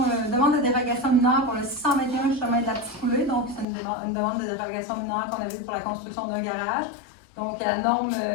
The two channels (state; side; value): drops out; right; at 3.7 s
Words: demande de dérogation mineure pour le 621 chemin de la Petite Coulée. Donc, c'est une demande de dérogation mineure qu'on avait pour la construction d'un garage. Donc, la norme